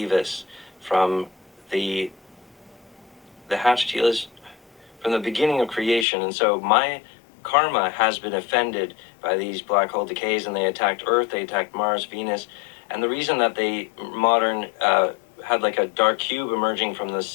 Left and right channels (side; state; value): right; drops out; at 6.1 s